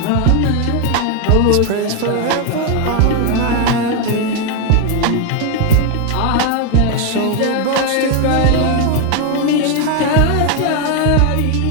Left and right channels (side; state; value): both; different; correlation 0.01